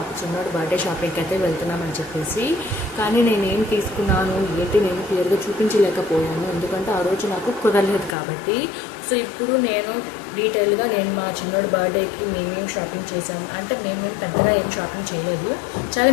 చిన్నోడు బర్త్డే షాపింగ్కి అయితే వెళ్తున్నామని చెప్పేసి. కానీ నేనేం తీసుకున్నాను ఏంటి నేను క్లియర్గా చూపించలేకపోయాను, ఎందుకంటే ఆ రోజు నాకు కుదరలేదు కాబట్టి. సో ఇప్పుడు నేను డీటెయిల్గా నేను మా చిన్నోడు బర్త్డేకి మేమేం షాపింగ్ చేసాము అంటే మేము పెద్దగా ఏం షాపింగ్ చేయలేదు, చాలా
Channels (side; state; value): right; drops out; at 8.2 s